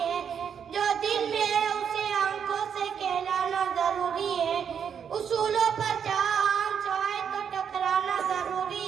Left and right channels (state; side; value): quieter; left; 7.6 dB